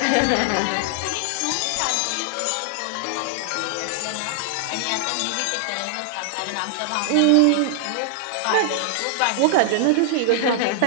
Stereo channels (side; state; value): both; different; correlation 0.00